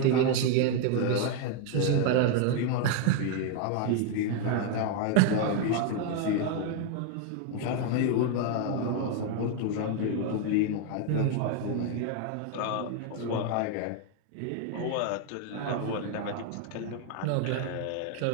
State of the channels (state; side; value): different; both; correlation 0.01